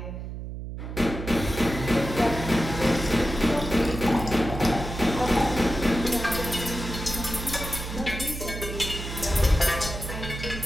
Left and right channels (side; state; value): right; noise; hum, 8 dB below the sound